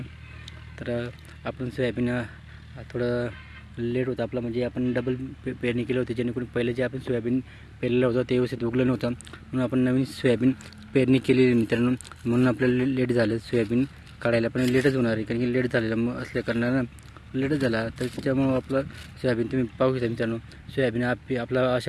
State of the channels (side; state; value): both; identical; correlation 1.00